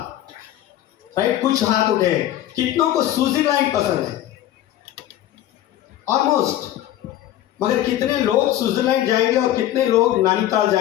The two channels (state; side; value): quieter; right; 13.0 dB